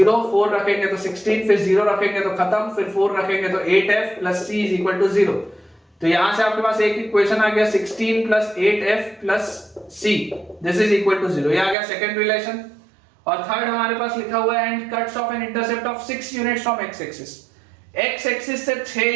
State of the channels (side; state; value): left; drops out; at 11.8 s